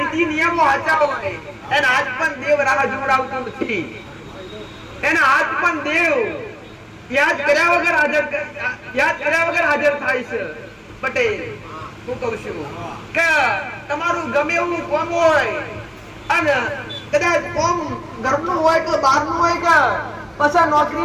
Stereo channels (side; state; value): both; identical; correlation 1.00